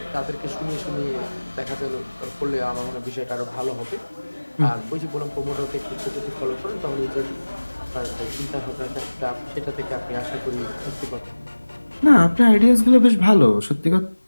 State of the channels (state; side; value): inverted; both; correlation -1.00